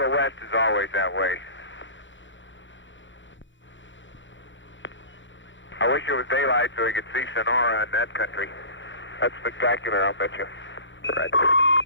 the west is always that way. I wish it was daylight so we could see Sonora in that country. That's spectacular, I'll bet you. Right.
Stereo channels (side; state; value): right; late; 0.55 ms